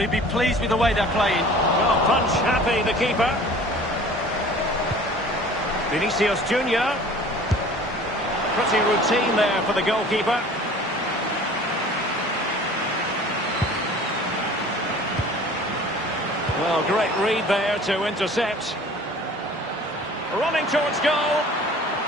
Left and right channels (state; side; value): normal; both; correlation 0.46